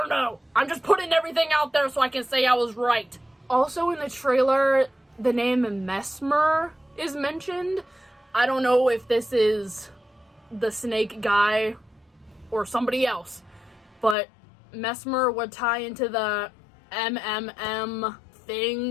know. I'm just putting everything out there so I can say I was right. Also in the trailer, the name Mesmer is mentioned. I don't know if this is the snake guy or somebody else, but Mesmer would tie into the MMM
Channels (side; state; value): right; drops out; at 14.2 s